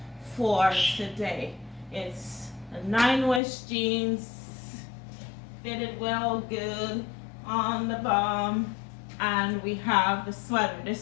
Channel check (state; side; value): drops out; right; at 3.4 s